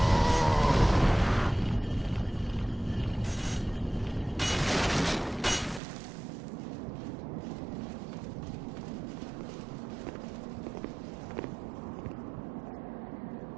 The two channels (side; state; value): left; drops out; at 5.8 s